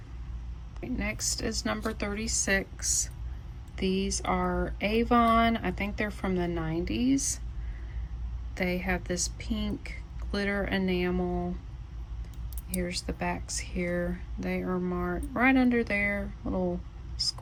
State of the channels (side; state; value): both; identical; correlation 1.00